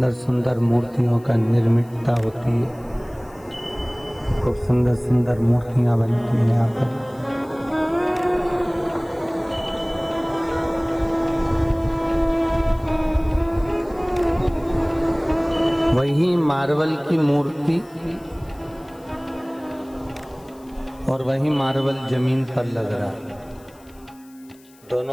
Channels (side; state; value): left; noise; hiss, 28 dB below the sound